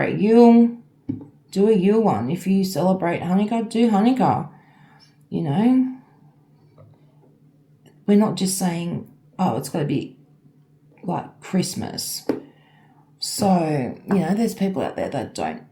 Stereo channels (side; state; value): both; identical; correlation 1.00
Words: Yule, do a Yule one. If you celebrate Hanukkah, do Hanukkah. You know, we're not just saying, oh, it's got to be like Christmas. So, you know, there's people out there that don't